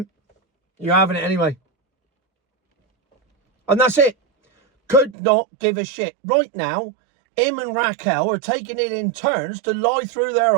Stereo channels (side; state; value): left; drops out; at 5.2 s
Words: you're having it anyway. And that's it. Could not give a shit. Right now, him and Raquel are taking it in turns to lie through their